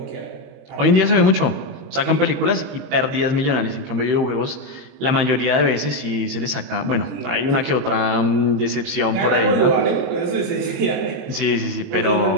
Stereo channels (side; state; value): left; late; 22 ms